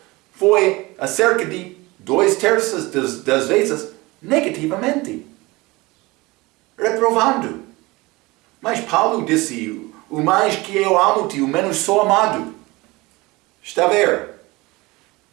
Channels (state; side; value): quieter; left; 22.3 dB